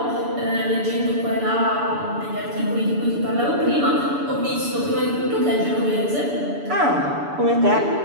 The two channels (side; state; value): left; late; 6.9 ms